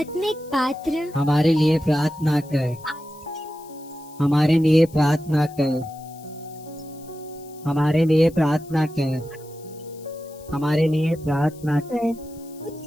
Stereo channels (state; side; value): noise; left; hiss, 24 dB below the sound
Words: पात्र, हमारे लिए प्रार्थना कर। हमारे लिए प्रार्थना कर। हमारे लिए प्रार्थना कर। हमारे लिए प्रार्थना कर।